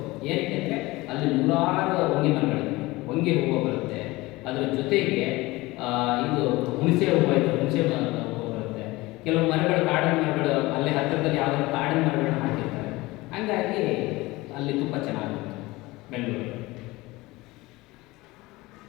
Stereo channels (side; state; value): right; quieter; 20.8 dB